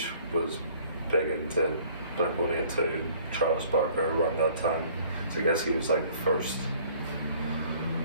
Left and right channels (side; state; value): both; inverted; correlation -0.55